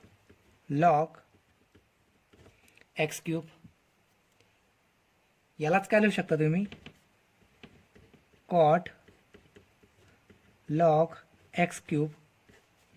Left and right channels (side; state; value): both; identical; correlation 1.00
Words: log x cube. यालाच काय लिहू शकता तुम्ही, कॉट लॉग एक्स क्यूब